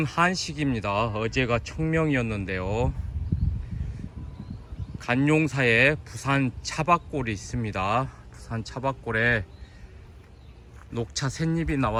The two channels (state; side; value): identical; both; correlation 1.00